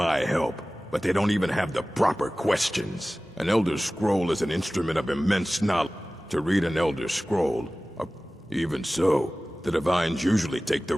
help, but they don't even have the proper questions. An Elder Scroll is an instrument of immense knowledge. To read an Elder Scroll, even so, the Divines usually take the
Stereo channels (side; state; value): both; normal; correlation 0.97